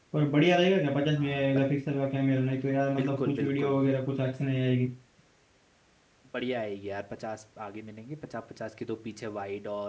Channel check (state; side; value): identical; both; correlation 1.00